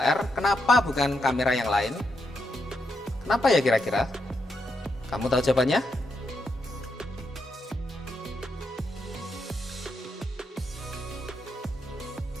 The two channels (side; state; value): both; normal; correlation 0.81